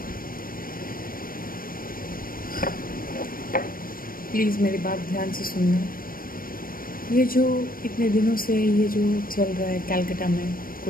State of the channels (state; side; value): late; right; 0.41 ms